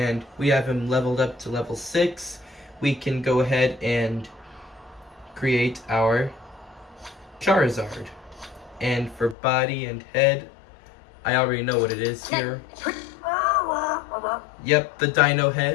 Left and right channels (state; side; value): drops out; right; at 9.3 s